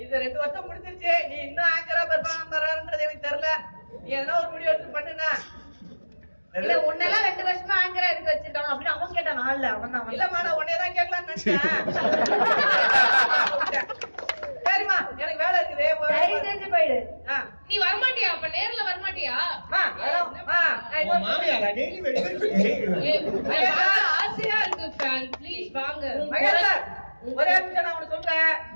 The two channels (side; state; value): both; inverted; correlation -1.00